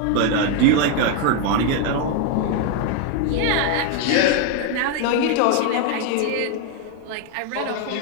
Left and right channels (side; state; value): both; different; correlation 0.01